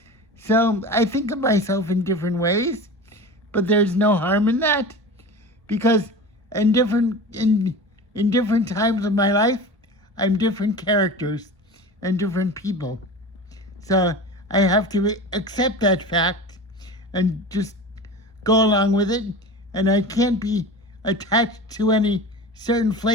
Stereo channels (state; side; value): normal; both; correlation 0.33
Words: So I think of myself in different ways, but there's no harm in that, because in different times of my life, I'm different characters and different people. So I have to accept that fact and just go along with it, and I can't be attached to any certain